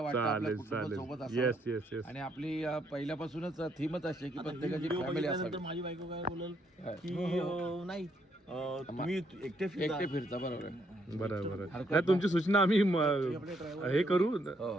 आपल्या कुटुंबासोबत येस असावं. येस येस आणि आपली पहिल्यापासूनच थीमच अशी आहे की प्रत्येकाची फॅमिली असावी. माझी बायको काय बोलल की नाही तुम्ही एकटे फिरता. बरोबर आहे. बरं नाही तुमची सूचना आम्ही हे करू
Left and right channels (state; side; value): normal; both; correlation 0.73